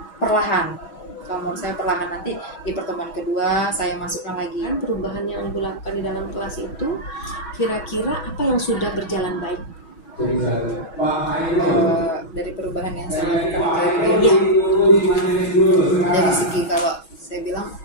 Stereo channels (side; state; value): right; late; 6.2 ms